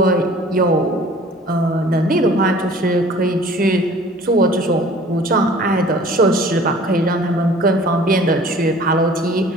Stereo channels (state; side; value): normal; both; correlation 0.49